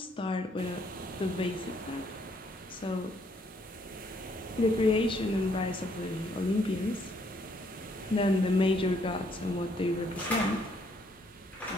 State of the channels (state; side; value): normal; both; correlation 0.68